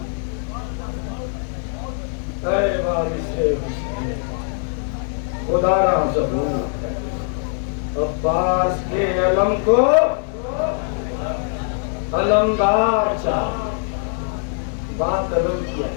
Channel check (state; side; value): silent; right; 56 dB below the other